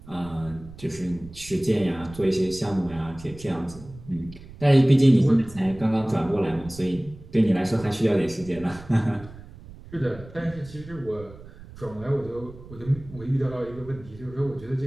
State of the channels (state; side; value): noise; right; rumble, 18 dB below the sound